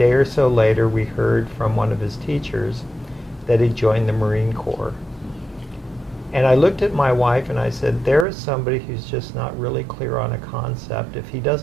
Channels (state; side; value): drops out; left; at 8.2 s